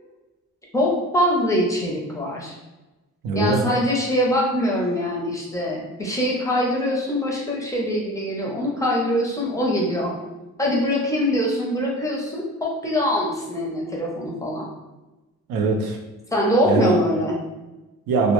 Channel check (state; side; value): normal; both; correlation 0.37